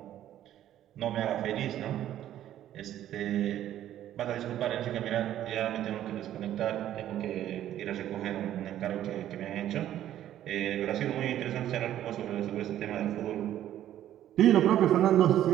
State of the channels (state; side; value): quieter; left; 12.0 dB